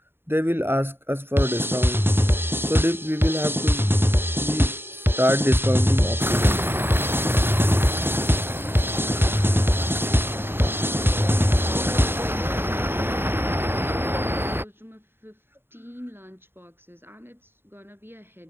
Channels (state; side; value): late; left; 0.11 ms